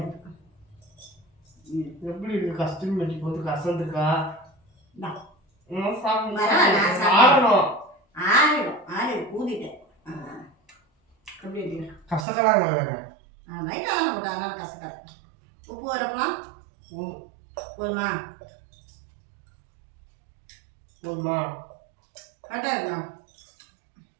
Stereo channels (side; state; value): left; drops out; at 12.2 s